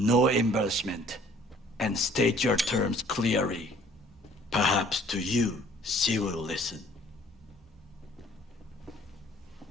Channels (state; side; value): normal; both; correlation 0.56